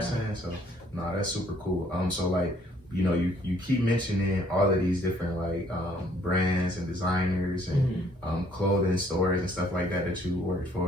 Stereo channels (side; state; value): both; normal; correlation 0.63